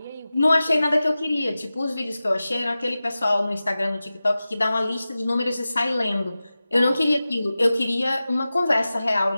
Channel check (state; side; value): inverted; both; correlation -0.95